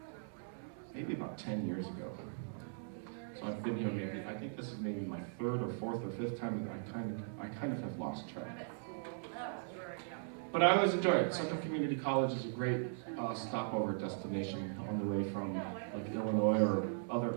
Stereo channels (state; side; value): silent; left; digital silence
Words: about 10 years ago. So I've been here I think this is maybe my third or fourth or fifth time, and I kind of have lost track. But I always enjoy it. Central Community College is a great stopover destination on the way from like Illinois or